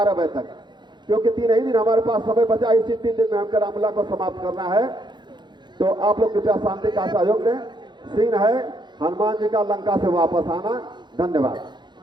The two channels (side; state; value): left; late; 0.21 ms